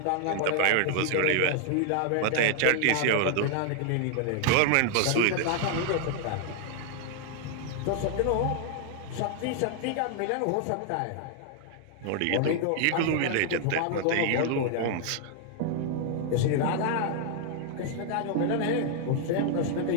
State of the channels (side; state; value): both; different; correlation 0.00